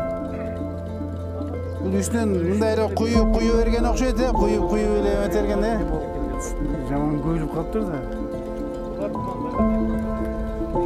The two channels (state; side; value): identical; both; correlation 1.00